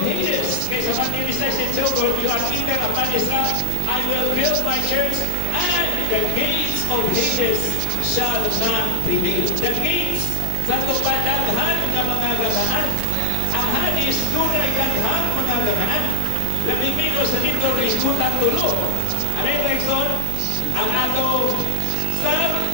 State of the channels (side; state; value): both; different; correlation 0.00